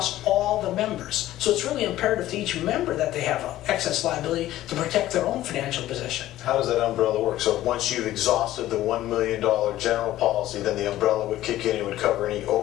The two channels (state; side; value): quieter; right; 14.5 dB